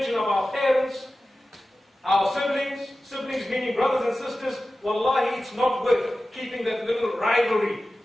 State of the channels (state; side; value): normal; both; correlation 0.95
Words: of our parents, our siblings meaning brothers and sisters. Wallahi, it's not worth keeping that little rivalry